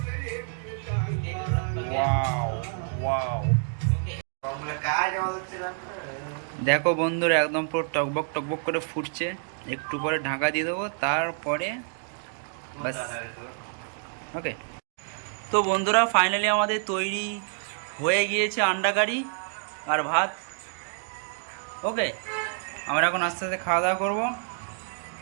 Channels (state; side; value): silent; left; 59 dB below the other